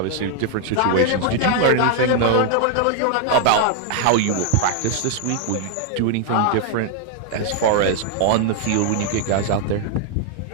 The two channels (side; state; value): both; different; correlation 0.00